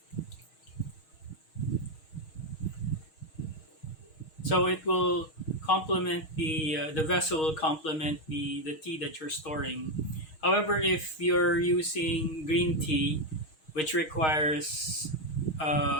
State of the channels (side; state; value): right; late; 6.4 ms